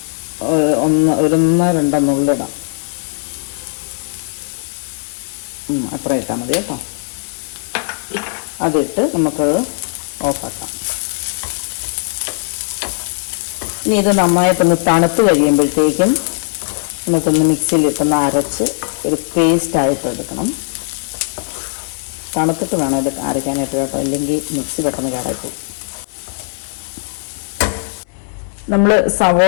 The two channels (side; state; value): right; silent; 61 dB below the other